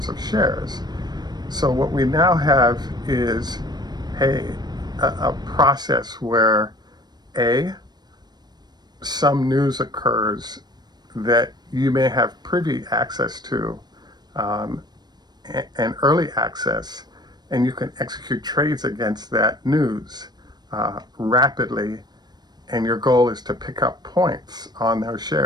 of shares. So what we now have is a process where some news occurs that you may have privy access to, and early access, and you can execute trades against that news rapidly, and your goal is to pick up points on those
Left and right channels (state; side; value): late; left; 0.20 ms